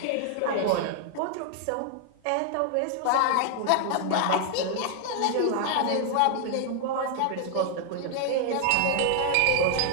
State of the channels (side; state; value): both; different; correlation 0.00